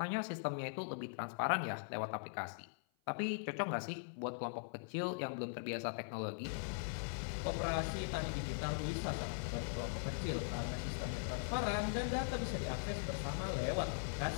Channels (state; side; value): silent; right; 51 dB below the other